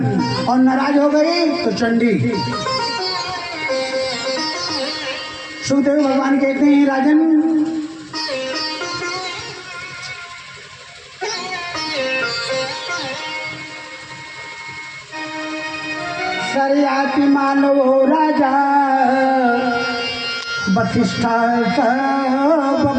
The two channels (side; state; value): both; identical; correlation 1.00